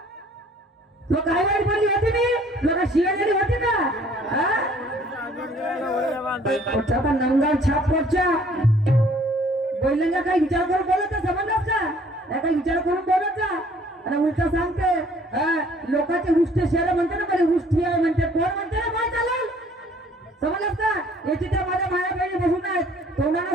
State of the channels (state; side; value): normal; both; correlation 0.57